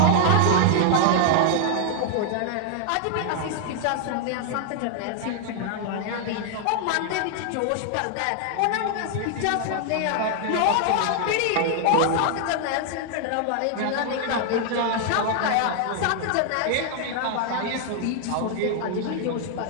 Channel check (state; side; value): different; both; correlation 0.00